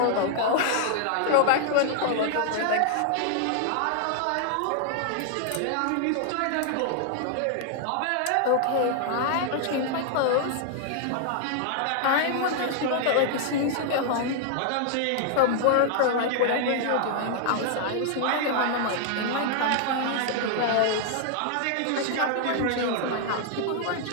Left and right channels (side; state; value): both; different; correlation -0.01